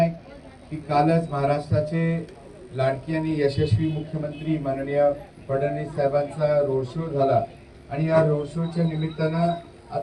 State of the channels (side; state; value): both; identical; correlation 1.00